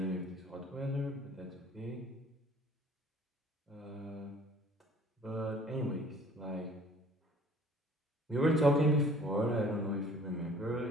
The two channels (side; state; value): both; normal; correlation 0.53